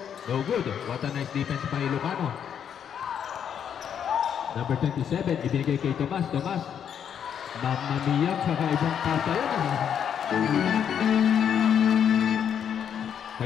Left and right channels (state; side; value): quieter; right; 8.4 dB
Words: No good. What a nice defense by Ilocano. Number 27. Ibinigay kay Tomas. Mamamiyag sa kaibang pasa yun.